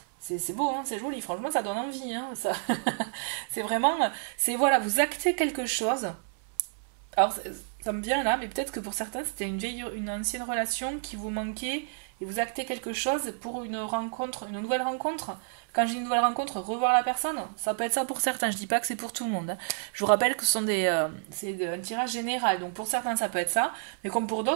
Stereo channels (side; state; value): left; silent; 58 dB below the other